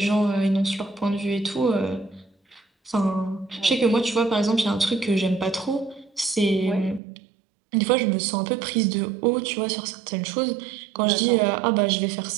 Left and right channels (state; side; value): drops out; left; at 7.0 s